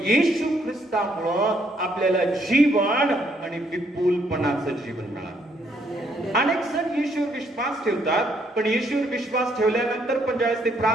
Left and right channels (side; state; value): both; normal; correlation 0.70